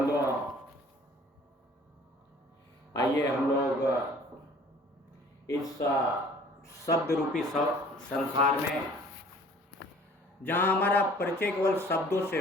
आइए हम लोग इस शब्द रूपी संसार में, जहाँ हमारा परिचय केवल शब्दों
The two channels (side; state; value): both; normal; correlation 0.52